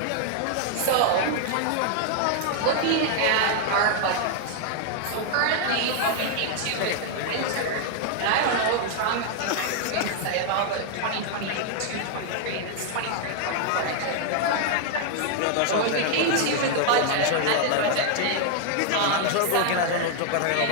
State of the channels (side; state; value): both; different; correlation 0.00